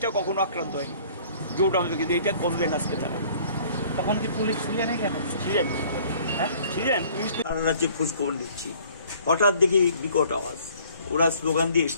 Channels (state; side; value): inverted; both; correlation -0.55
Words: কখনো আক্রান্ত হয়নি জোট আমলে কিন্তু এটা করলেন আজকে তারা তখন কি পুলিশ ছিলেন এখানে ছিলেন হ্যাঁ ছিলেন পুলিশ সারা রাজ্যে খোঁজখবর নিচ্ছি হঠাৎ দেখি বিকট আওয়াজ ওরা স্লোগান দিয়ে